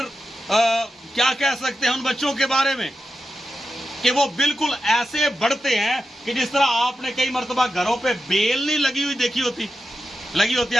کیا کہہ سکتے ہیں ان بچوں کے بارے میں کہ وہ بالکل ایسے بڑھتے ہیں کہ جس طرح آپ نے کئی مرتبہ گھروں پہ بیل نہیں لگی ہوئی دیکھی ہوتی، لگی ہوتی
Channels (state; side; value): normal; both; correlation 0.90